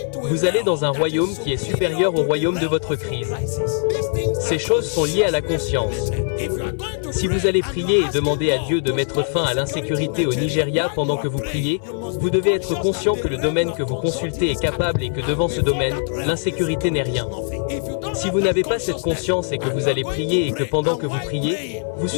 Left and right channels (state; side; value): silent; right; 59 dB below the other